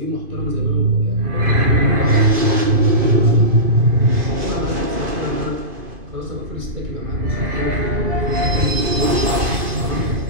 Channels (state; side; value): late; left; 2.5 ms